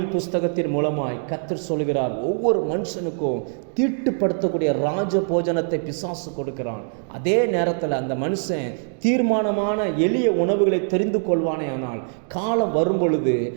புஸ்தகத்தின் மூலமாய் கர்த்தர் சொல்கிறார், ஒவ்வொரு மனுஷனுக்கும் தீட்டுப்படுத்தக்கூடிய ராஜ போஜனத்தை பிசாசு கொடுக்கிறான். அதே நேரத்தில் அந்த மனுஷன் தீர்மானமான எளிய உணவுகளை தெரிந்து கொள்வானே. ஆனால் காலம் வரும் பொழுது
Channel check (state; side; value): silent; left; 63 dB below the other